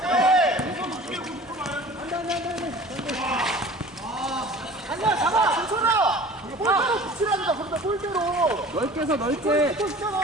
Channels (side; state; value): both; normal; correlation 0.43